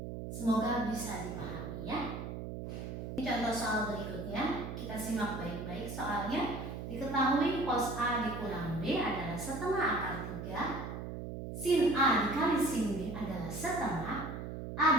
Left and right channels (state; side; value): noise; right; hum, 7 dB below the sound